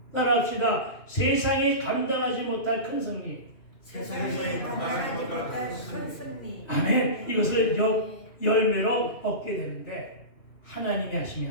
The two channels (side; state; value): right; late; 2.6 ms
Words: 따라합시다. 세상이 감당하지 못할 큰 승리. 세상에 감당하지 못할 큰 승리. 아멘. 이것을 열매로 얻게 되는데 하나님이